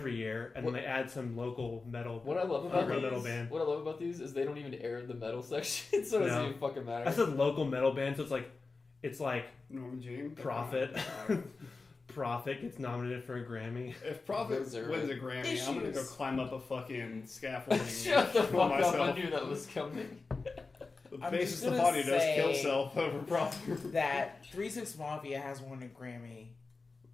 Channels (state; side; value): quieter; right; 4.0 dB